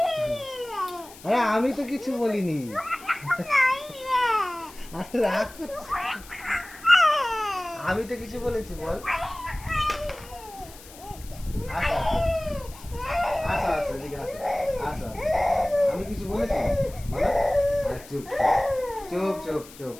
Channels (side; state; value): left; noise; hiss, 19 dB below the sound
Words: আরে আমি তো কিছু বলিনি। আরে রাগ করছিস? আমি তো কিছু বলেছি বল? আসো আসো আসো এদিকে আসো, আসো আসো। আমি কিছু বলেছি বলো? আর চুপ চুপ চুপ চুপ